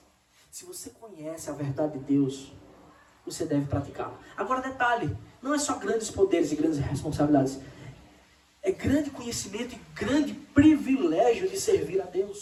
Se você conhece a verdade de Deus, você deve praticá-la. Agora, detalhe, não é só grandes poderes e grandes responsabilidades. É grande conhecimento e grande privilégio de servir a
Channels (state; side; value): identical; both; correlation 1.00